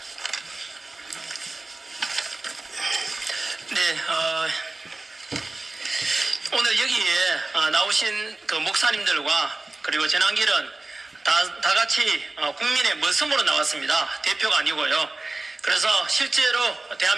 네, 오늘 여기에 나오신 그 목사님들과 그리고 전환길은 다 같이 국민의 머슴으로 나왔습니다. 대표가 아니고요. 그래서 실제로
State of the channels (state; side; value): quieter; left; 3.1 dB